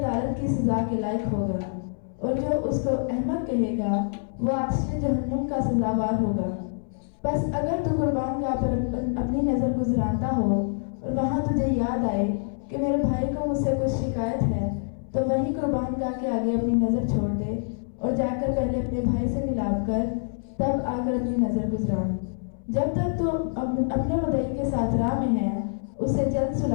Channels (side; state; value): right; silent; 61 dB below the other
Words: کی سزا کے لائق ہوگا، اور جو اس کو احمق کہے گا وہ آتش جہنم کا سزاوار ہوگا۔ بس اگر تو قربان گاہ پر اپنی نظر گزرانتا ہو اور وہاں تجھے یاد آئے کہ میرے بھائی کو مجھ سے کچھ شکایت ہے، تو وہی قربان گاہ کے آگے اپنی نظر چھوڑ دے اور جا کر پہلے اپنے بھائی سے ملاپ کر تب آ کر اپنی نظر گزران۔ جب تک تو اپنے مدعی کے ساتھ راہ میں ہے اسے جلد